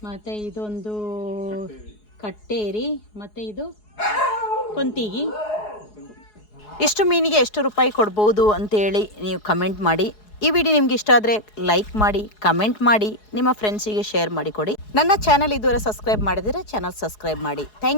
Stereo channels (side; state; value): right; late; 4.7 ms